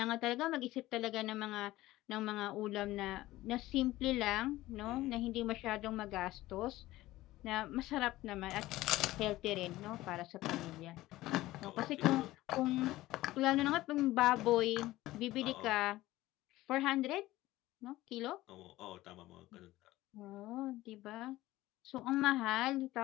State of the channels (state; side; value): quieter; right; 17.0 dB